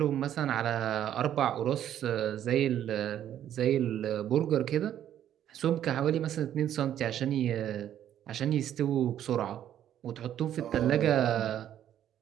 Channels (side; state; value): left; quieter; 10.9 dB